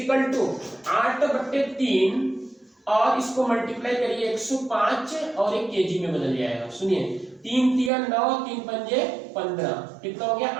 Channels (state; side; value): drops out; left; at 7.9 s